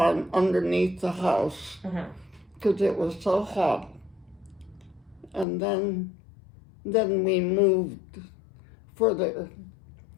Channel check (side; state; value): right; drops out; at 5.5 s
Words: underneath the house because it was so hot. And then we moved further,